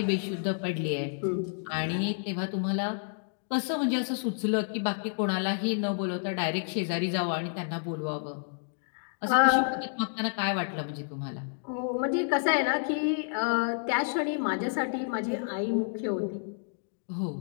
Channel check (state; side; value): silent; right; digital silence